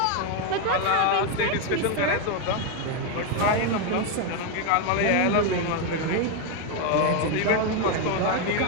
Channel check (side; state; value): both; different; correlation 0.02